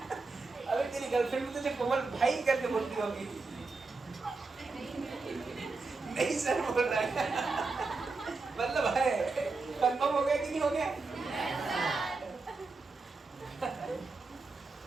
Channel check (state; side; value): quieter; left; 3.9 dB